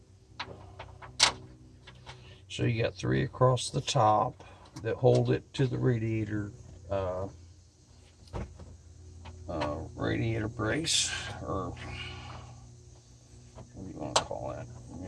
So you got 3 across the top that hold it to the radiator brace, or what do you want to call that?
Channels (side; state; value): both; identical; correlation 1.00